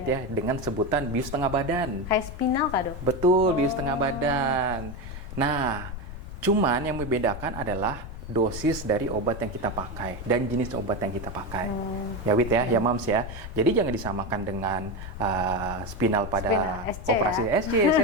ya dengan sebutan bius tengah badan. Kayak spinal kah dok? Betul, bius tengah badan. Nah, cuman yang membedakan adalah dosis dari obat yang kita pakai dan jenis obat yang kita pakai. Ya Wit ya, ya Mams ya. Jadi jangan disamakan dengan spinal pada SC, operasi ya? SC,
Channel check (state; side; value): noise; left; rumble, 10 dB below the sound